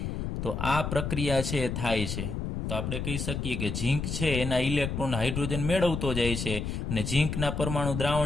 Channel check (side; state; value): left; noise; rumble, 3 dB below the sound